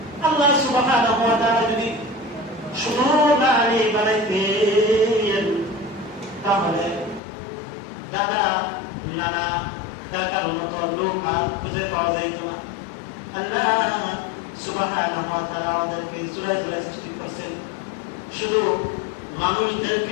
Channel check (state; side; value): drops out; right; at 7.2 s